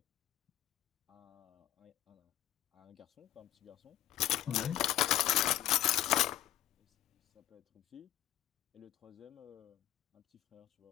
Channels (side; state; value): right; quieter; 13.5 dB